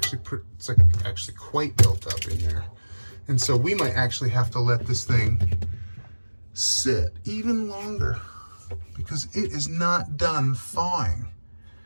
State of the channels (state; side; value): inverted; both; correlation -1.00